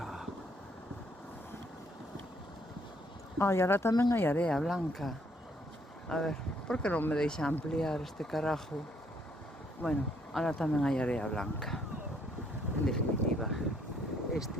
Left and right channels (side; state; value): both; normal; correlation 0.68